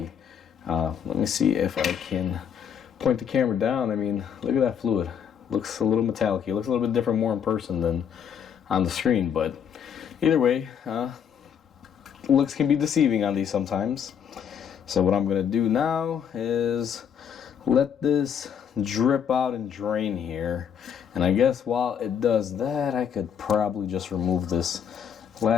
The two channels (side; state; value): right; quieter; 8.0 dB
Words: Let me see if I can point the camera down. I mean, look at that fluid. Looks a little metallic-y. It looks a little bit different more in person than on the screen, but either way, looks can be deceiving on these sometimes. So what I'm gonna do now is let this drip out and drain here, and I guess while it does that, I could probably just remove this